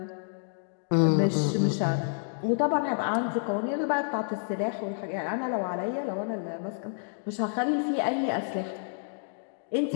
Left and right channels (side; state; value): right; silent; digital silence